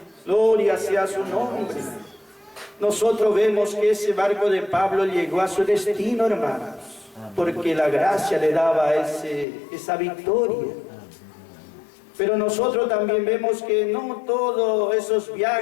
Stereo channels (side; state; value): right; drops out; at 9.5 s